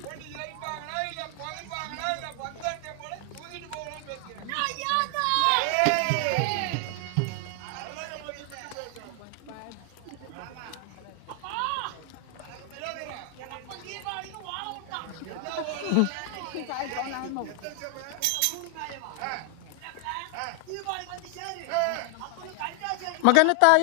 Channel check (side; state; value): both; different; correlation 0.00